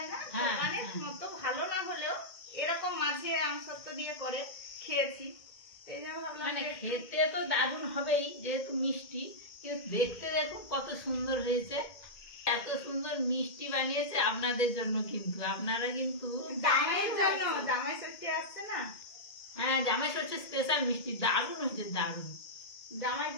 না, হ্যাঁ, দোকানের হ্যাঁ। মতো ভালো না হলেও এরকম মাঝে আম সত্ত্ব দিয়ে করে খেয়েছি। এই জন্য ভাবলাম মানে যে একটু- খেতে তো দারুণ হবেই যেহেতু মিষ্টি, কিন্তু দেখতে দেখুন কত সুন্দর হয়েছে। এত সুন্দর মিষ্টি বানিয়েছে আপনাদের জন্য, কিন্তু আপনারা কিন্তু জামাইয়ের জন্য, জামাই ষষ্ঠী আসছে না, হ্যাঁ জামাই হচ্ছে স্পেশাল মিষ্টি, দারুণ হয়েছে দারুণ।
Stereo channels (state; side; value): late; right; 1.7 ms